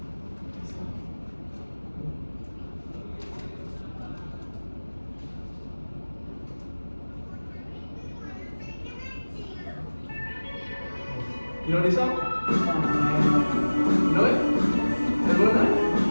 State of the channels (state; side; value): inverted; both; correlation -1.00